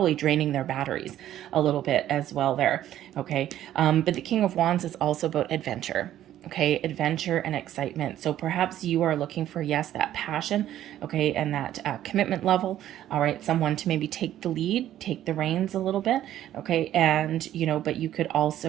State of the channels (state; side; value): quieter; left; 12.3 dB